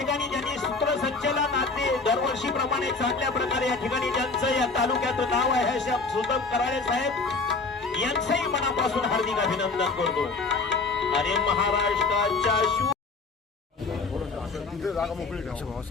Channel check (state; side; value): quieter; right; 4.1 dB